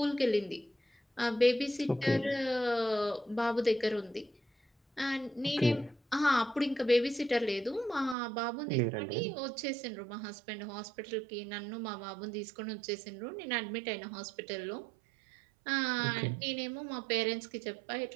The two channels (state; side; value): drops out; left; at 8.2 s